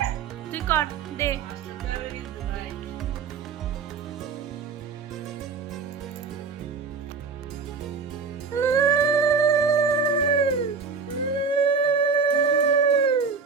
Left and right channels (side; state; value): left; quieter; 5.1 dB